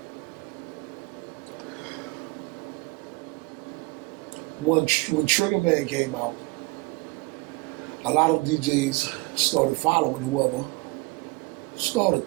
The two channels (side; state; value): left; quieter; 25.6 dB